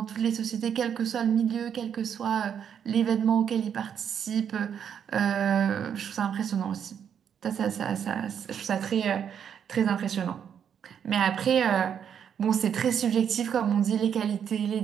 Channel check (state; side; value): quieter; left; 8.3 dB